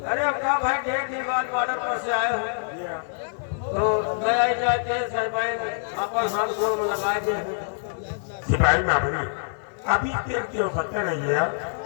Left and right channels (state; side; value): silent; right; 62 dB below the other